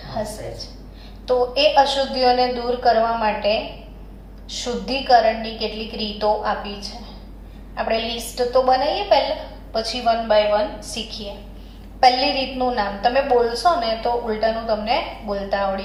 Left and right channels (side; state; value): both; identical; correlation 1.00